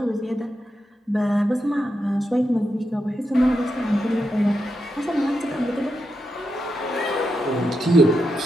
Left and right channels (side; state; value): both; normal; correlation 0.86